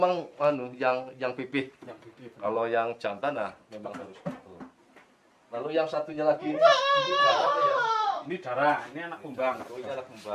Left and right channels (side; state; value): both; identical; correlation 1.00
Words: yang pipih. Kalau yang jantan memang harus betul. Lalu yang satunya lagi ini darah apa ya? Ini darah, ini anak kumbang. Oh, ini anak